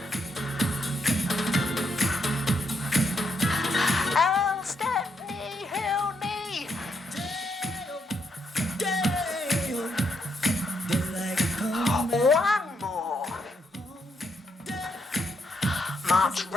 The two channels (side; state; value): both; normal; correlation 0.78